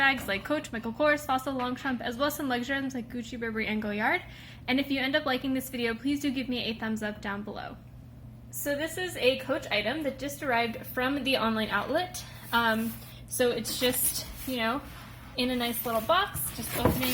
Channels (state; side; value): identical; both; correlation 1.00